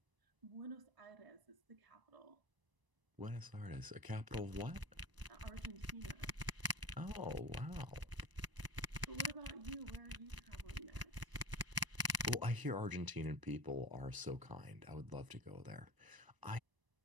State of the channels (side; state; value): left; late; 1.0 ms